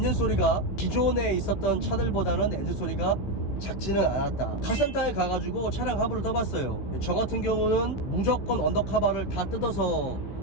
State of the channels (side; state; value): right; late; 15 ms